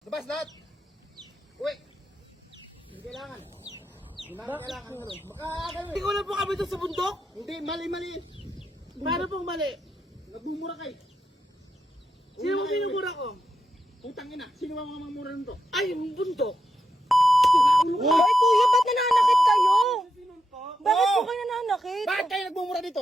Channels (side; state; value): both; normal; correlation 0.85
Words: Labas lahat! Uy! Hindi kailangan. Hindi namin kailangan ganun. Baka ganun. Hindi ko lang po kami doon sa bundok. Hindi, mali. Paano pong mali? Nagmumura kayo. Sino mo minumura ko? Putang ina, sino ba mga mamura nito? Ay, yung bundok. Ay, kuya, ba't nananakit kayo? Bakit Oo! po kayo nananakit? Bakit kayo nagmumura dito?